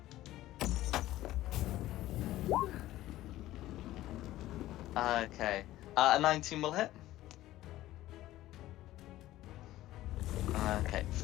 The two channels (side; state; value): right; quieter; 15.4 dB